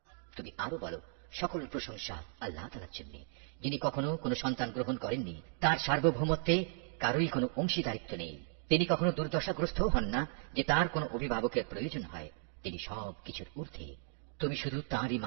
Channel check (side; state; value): left; silent; 54 dB below the other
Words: তুমি আরো বলো, সকল প্রশংসা আল্লাহ তাআলার জন্য, যিনি কখনো কোনো সন্তান গ্রহণ করেননি, তার সার্বভৌমত্বে কারোই কোনো অংশীদারিত্ব নেই। তিনি কখনো দুর্দশাগ্রস্ত হন না যে তার কোনো অভিভাবকের প্রয়োজন হয়। তিনি সব কিছুর ঊর্ধ্বে। তুমি শুধু তাঁরই